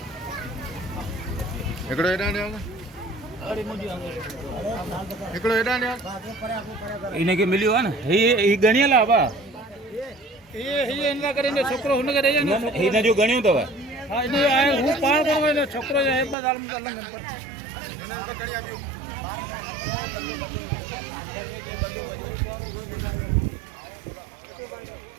इन्हें के मिलियो है ना ये गणिया लावा ये इनका करेंगे छोकरो हुन करे ना इन्हें जो गणियो तो हां इन्हें आए हूं पार करो ने छोकरो है बदाल में कर लंगन पर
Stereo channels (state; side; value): drops out; left; at 16.4 s